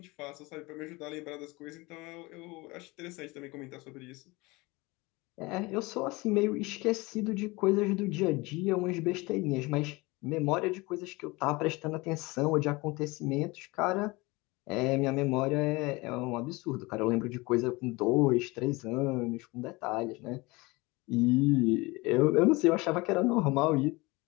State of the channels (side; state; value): right; quieter; 23.7 dB